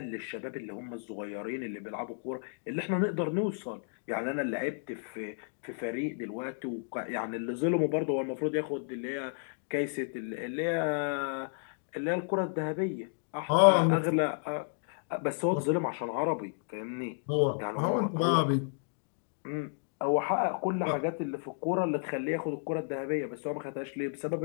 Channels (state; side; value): silent; right; digital silence